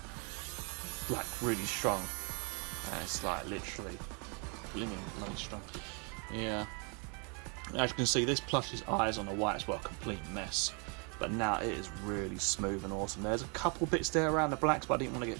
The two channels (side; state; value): left; quieter; 35.6 dB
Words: Like really strong, and it's like literally blooming bloody strong. Yeah. As you can see, this plush's eyes on the whites were a complete mess, but now it is really smooth and awesome. There's a couple bits there around the blacks, but I didn't want to